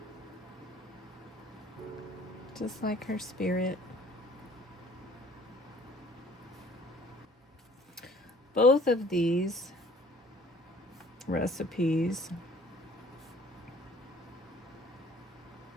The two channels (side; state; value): both; normal; correlation 0.53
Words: just like her spirit. Both of these recipes